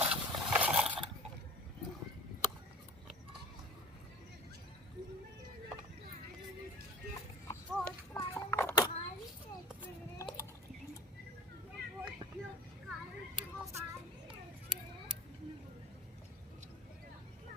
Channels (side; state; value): both; normal; correlation 0.37